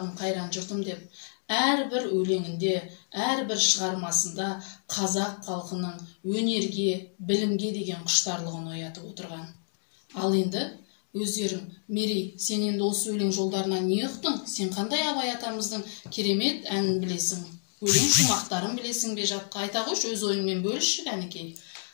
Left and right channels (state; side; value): silent; right; digital silence